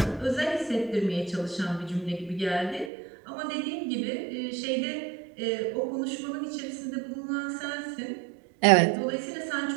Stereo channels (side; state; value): left; drops out; at 2.9 s